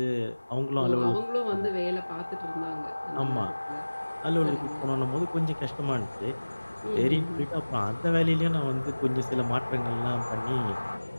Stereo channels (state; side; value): inverted; both; correlation -1.00